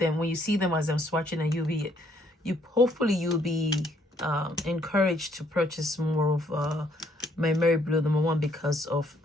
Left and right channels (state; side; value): normal; both; correlation 0.68